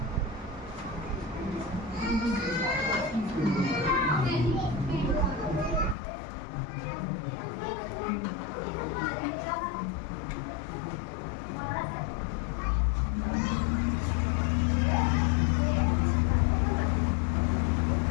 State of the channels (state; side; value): drops out; right; at 6.0 s